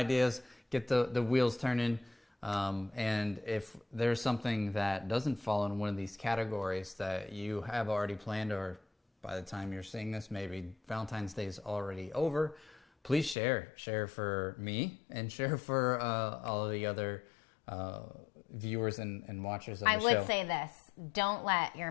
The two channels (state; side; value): drops out; right; at 13.4 s